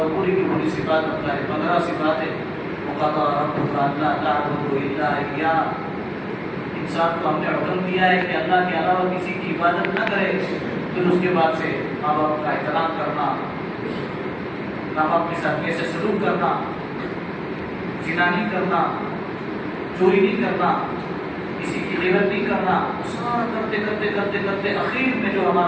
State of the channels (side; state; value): both; identical; correlation 1.00